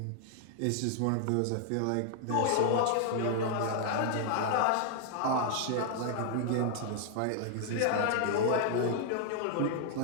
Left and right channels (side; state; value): both; different; correlation 0.00